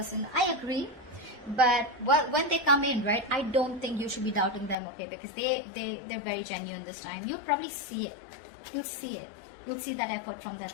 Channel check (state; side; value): drops out; right; at 4.8 s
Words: I agree. But when they come in, right, I don't think you should be doubting them, okay, because they're very genuine this time. You'll probably see it. You'll see it. You'll see that effort from